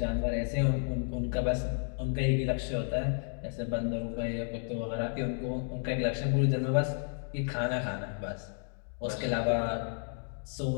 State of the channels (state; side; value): silent; right; 56 dB below the other